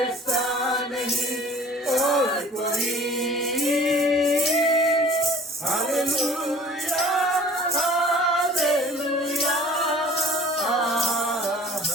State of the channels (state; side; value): normal; both; correlation 0.49